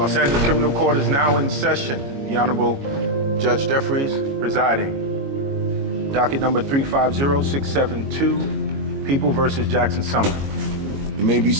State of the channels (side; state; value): left; late; 22 ms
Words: Angeles Criminal Court is now in session. The Honorable Judge Jeffries presiding. Docket number 350672, People versus Jackson Sumner. You may be